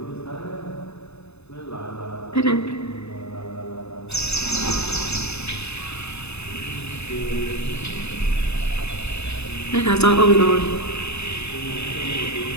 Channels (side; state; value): right; late; 0.80 ms